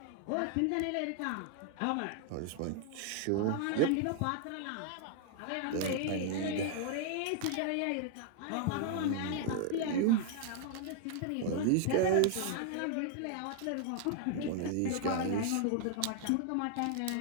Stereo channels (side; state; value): both; different; correlation 0.00